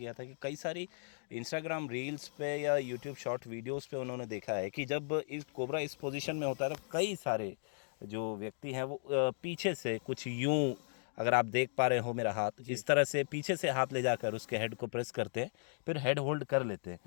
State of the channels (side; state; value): right; silent; digital silence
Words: था कि कई सारी इंस्टाग्राम रील्स पे या यूट्यूब शॉर्ट वीडियोस पे उन्होंने देखा है कि जब इस कोबरा इस पोजीशन में होता है तो कई सारे जो व्यक्ति हैं वो पीछे से कुछ यूं, अगर आप देख पा रहे हो मेरा हाथ, इस तरह से पीछे से हाथ ले जाकर उसके हेड को प्रेस करते हैं, फिर हेड होल्ड कर लेते